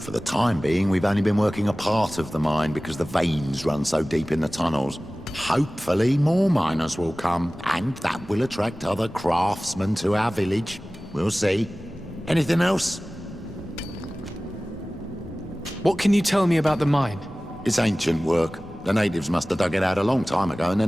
the time being, we've only been working a part of the mine because the veins run so deep in the tunnels. Hopefully, more miners will come, and that will attract other craftsmen to our village. We'll see. Anything else? What can you tell me about the mine? It's ancient work. The natives must have dug it out a long time ago and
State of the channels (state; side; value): normal; both; correlation 0.97